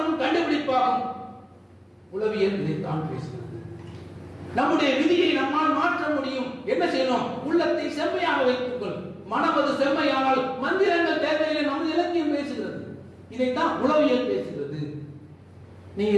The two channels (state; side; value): identical; both; correlation 1.00